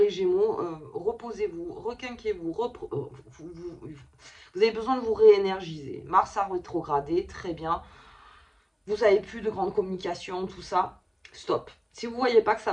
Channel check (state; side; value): identical; both; correlation 1.00